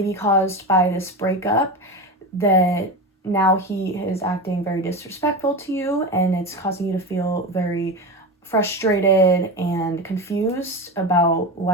caused by this breakup that now he is acting very disrespectful to you, and it's causing you to feel very frustrated and confused about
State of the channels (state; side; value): normal; both; correlation 0.22